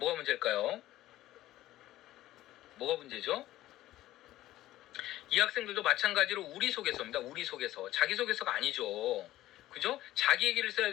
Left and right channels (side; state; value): right; quieter; 15.1 dB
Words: 문제일까요? 뭐가 문제죠? 이 학생들도 마찬가지로 우리 속에서입니다. 우리 속에서. 자기 속에서가 아니죠. 그죠? 자기 얘기를 써야